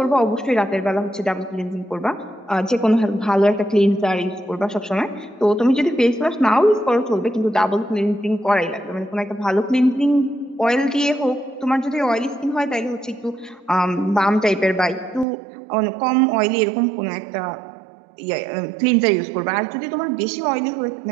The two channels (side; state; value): left; drops out; at 15.2 s